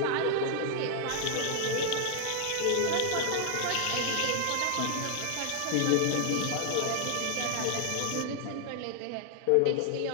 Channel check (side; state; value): both; different; correlation 0.00